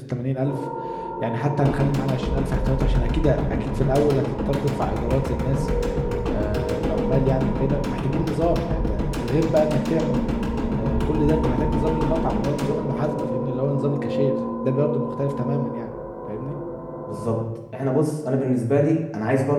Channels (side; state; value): both; identical; correlation 1.00